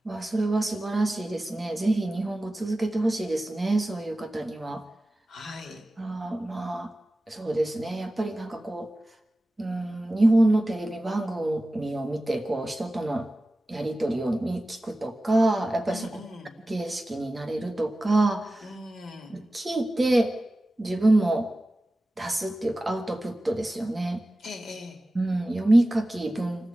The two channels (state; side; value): normal; both; correlation 0.96